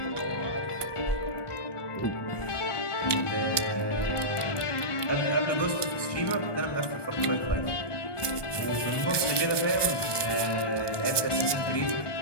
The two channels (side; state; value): right; late; 1.2 ms